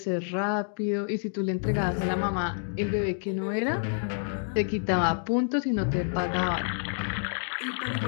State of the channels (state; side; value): silent; right; digital silence